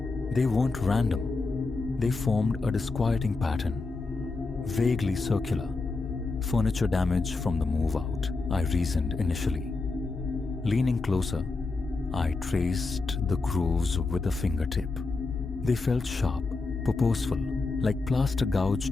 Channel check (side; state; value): right; quieter; 3.7 dB